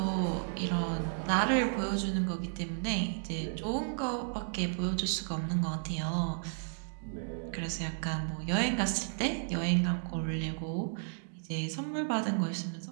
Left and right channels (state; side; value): silent; left; digital silence